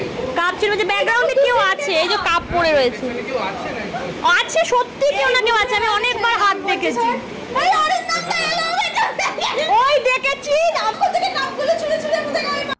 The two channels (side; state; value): both; identical; correlation 1.00